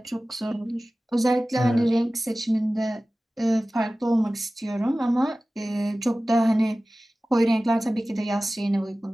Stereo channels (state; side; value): normal; both; correlation 0.97